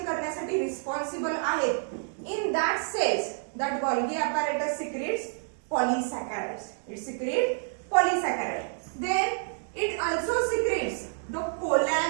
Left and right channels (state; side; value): silent; left; digital silence